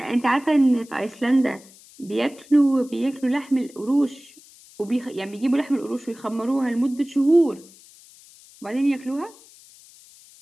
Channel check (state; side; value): noise; left; hiss, 24 dB below the sound